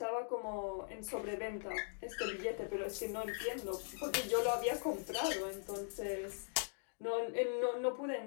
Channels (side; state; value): right; silent; digital silence